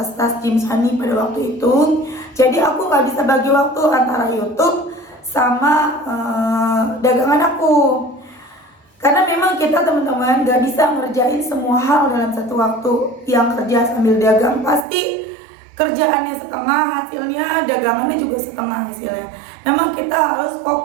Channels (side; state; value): left; drops out; at 14.9 s